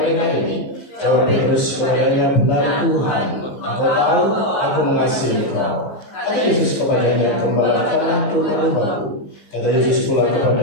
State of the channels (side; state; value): right; late; 14 ms